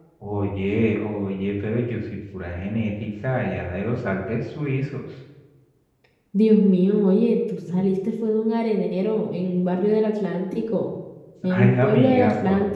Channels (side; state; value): both; identical; correlation 1.00